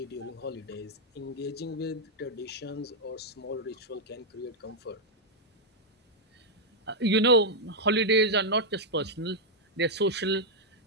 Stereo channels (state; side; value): normal; both; correlation -0.03